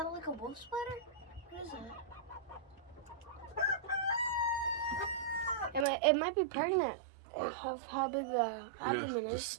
like a wolf spider? What is that? It might be pregnant. Right. How big the abdomen is.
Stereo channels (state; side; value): drops out; left; at 5.9 s